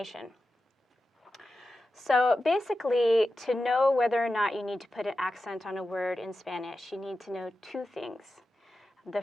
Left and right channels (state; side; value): normal; both; correlation 0.92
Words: So basically, to know whether or not you need to put an accent on a word in Spanish, you need to know two things. The